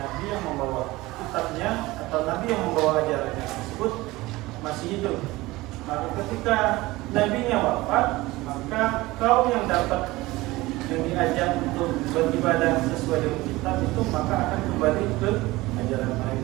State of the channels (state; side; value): quieter; left; 19.8 dB